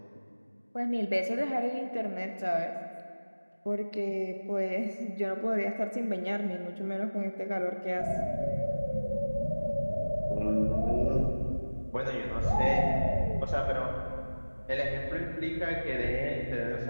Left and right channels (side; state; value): both; inverted; correlation -1.00